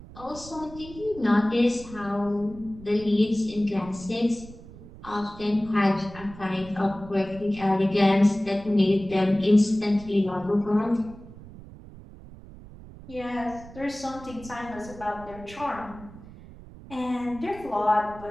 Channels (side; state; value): right; noise; rumble, 17 dB below the sound